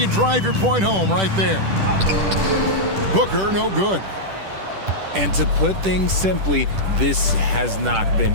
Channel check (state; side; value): late; left; 10 ms